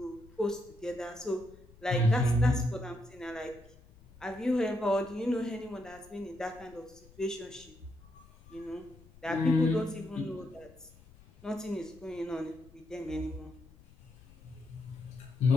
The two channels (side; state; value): left; noise; rumble, 23 dB below the sound